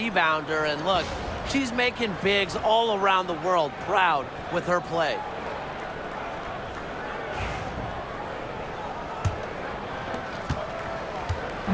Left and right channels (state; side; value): identical; both; correlation 1.00